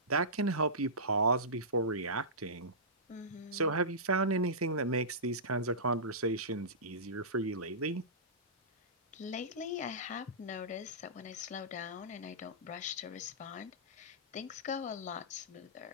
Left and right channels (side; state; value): both; normal; correlation -0.19